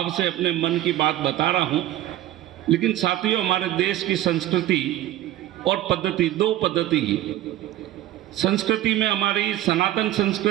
से अपने मन की बात बता रहा हूं। लेकिन साथियों, हमारे देश की संस्कृति और पद्धति, दो पद्धति की संस्कृति में हमारी सनातन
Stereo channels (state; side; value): quieter; left; 14.3 dB